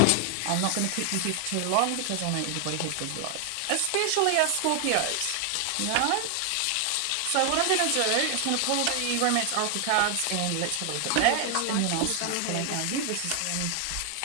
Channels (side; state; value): both; different; correlation 0.00